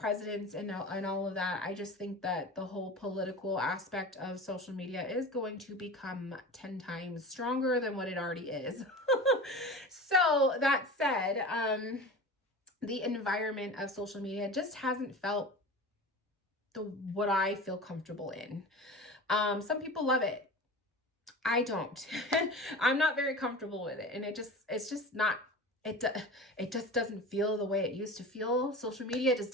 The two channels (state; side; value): normal; both; correlation 0.33